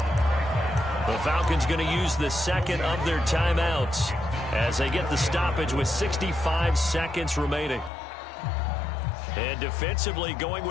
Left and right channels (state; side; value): drops out; right; at 7.9 s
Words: The Falcons going to use the second of their timeouts as they get the stoppage with 65 seconds remaining. And defensively going